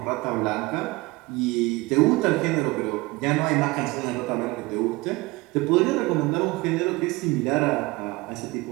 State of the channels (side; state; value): left; quieter; 22.5 dB